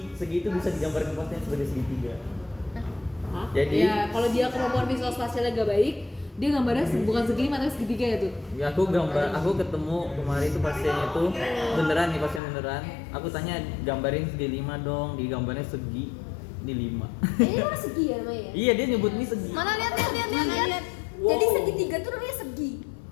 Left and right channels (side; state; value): right; drops out; at 12.4 s